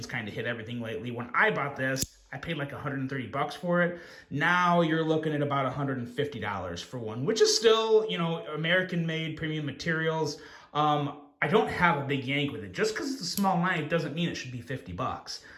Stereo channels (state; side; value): identical; both; correlation 1.00